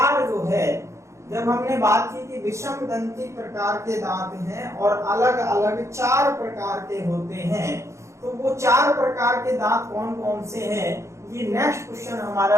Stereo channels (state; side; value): late; left; 0.14 ms